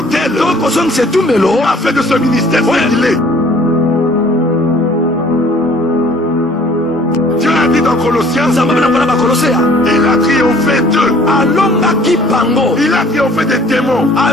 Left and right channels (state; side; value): normal; both; correlation 0.55